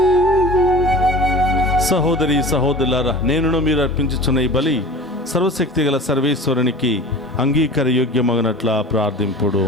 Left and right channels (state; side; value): normal; both; correlation 0.38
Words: సహోదరి సహోదరులారా, నేనును మీరు అర్పించుచున్న ఈ బలి సర్వశక్తి గల సర్వేశ్వరునికి అంగీకార యోగ్యమగినట్ల ప్రార్థింపుడు.